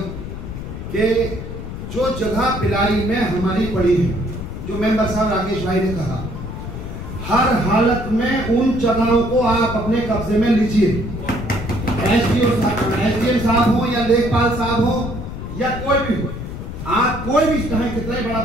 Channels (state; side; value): noise; left; rumble, 9 dB below the sound